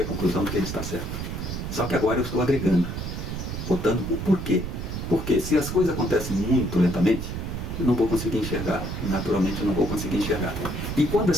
à conclusão de que ele está certo. Só que agora eu estou agregando, botando o porquê. Porque se as coisas acontecem muito lentamente, eu não vou conseguir enxergar. Naturalmente eu não vou conseguir enxergar. E quando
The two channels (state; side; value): noise; right; rumble, 5 dB below the sound